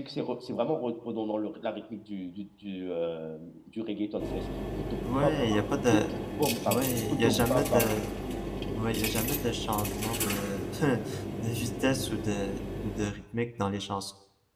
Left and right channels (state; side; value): identical; both; correlation 1.00